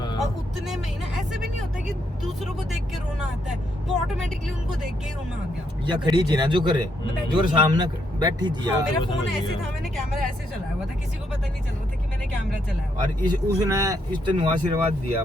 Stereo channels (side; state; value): both; normal; correlation 0.76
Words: और उतने में ही ना ऐसे भी नहीं होता कि दूसरों को देख के रोना आता है, वो ऑटोमेटिकली उनको देख के ही रोना आ गया। या खड़ी थी ना जो करे, जो सामने बैठी थी हाँ, यार। मेरा समझ फोन गया। ऐसे था, मैंने कैमरा ऐसे चलाया हुआ था, किसी को पता नहीं चल रहा था कि मैंने कैमरा चलाया हुआ। और उसने इस तेन आशीर्वाद दिया